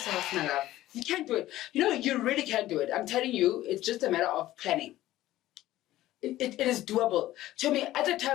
my love? You can't do it. You know, you really can't do it. I'm telling you, it's just a matter of planning. It is doable. To me, at the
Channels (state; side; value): quieter; right; 15.2 dB